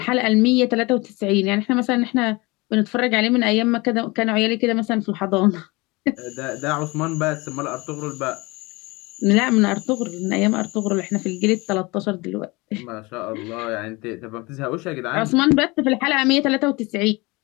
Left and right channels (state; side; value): quieter; right; 24.4 dB